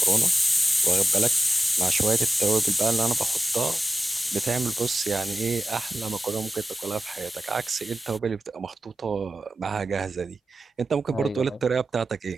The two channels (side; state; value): both; normal; correlation 0.94